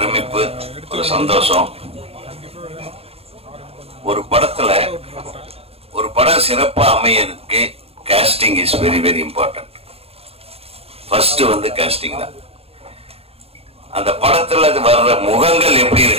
ஒரு சந்தோஷம். ஒரு படம் சிறப்பா அமையறதுக்கு casting is very very important. First casting தான். அந்த படத்துல வர்ற முகங்கள் எப்படி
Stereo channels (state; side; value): late; left; 0.29 ms